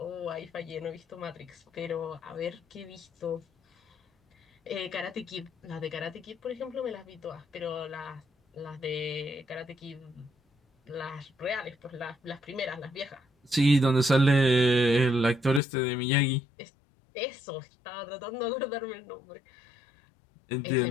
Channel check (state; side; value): drops out; right; at 15.6 s